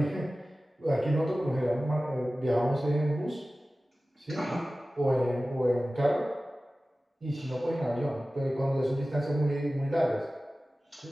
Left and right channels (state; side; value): normal; both; correlation 0.96